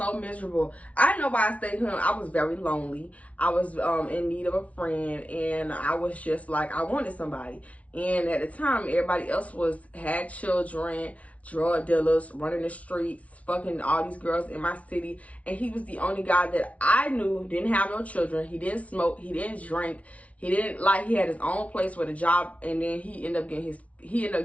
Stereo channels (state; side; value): late; right; 0.066 ms